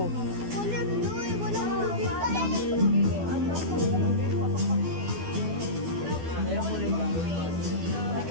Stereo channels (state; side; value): late; left; 12 ms